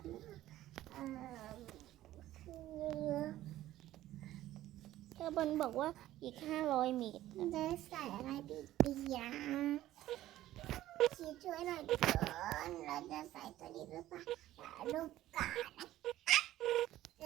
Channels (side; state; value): left; quieter; 14.4 dB